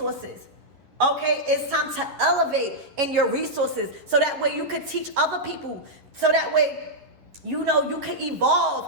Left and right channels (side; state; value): left; late; 11 ms